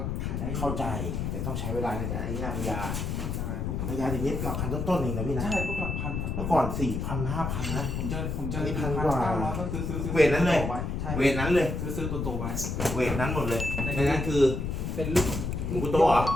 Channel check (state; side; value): noise; left; rumble, 2 dB below the sound